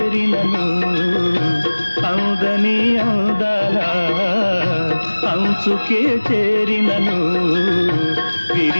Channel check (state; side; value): inverted; both; correlation -1.00